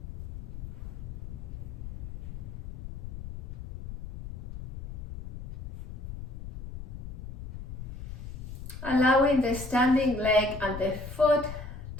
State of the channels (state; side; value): noise; left; rumble, 7 dB below the sound